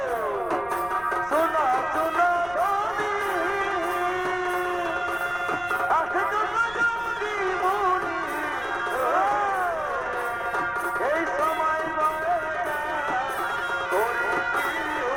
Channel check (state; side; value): noise; left; rumble, 19 dB below the sound